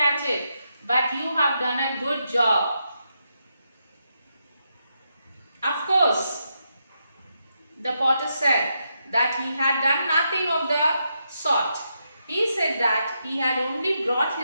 it, but you have done a good job. Of course, the potter said that he had done nothing of the sort. He said that he had only brought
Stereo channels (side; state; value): both; inverted; correlation -0.83